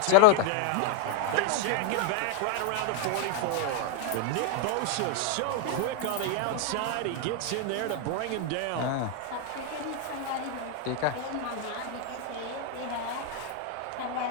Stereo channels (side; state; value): both; different; correlation 0.01